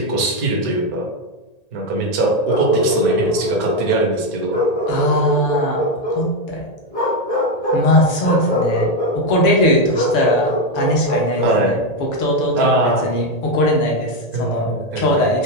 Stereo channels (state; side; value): late; right; 1.8 ms